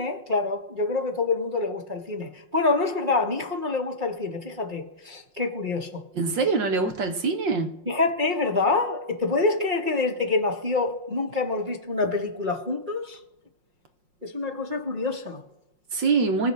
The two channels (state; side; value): late; left; 5.6 ms